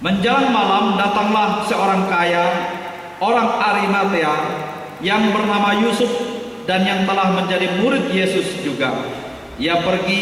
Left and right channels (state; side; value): identical; both; correlation 1.00